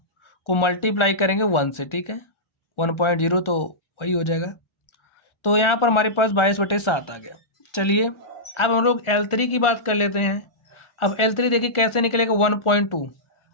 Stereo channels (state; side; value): late; right; 1.4 ms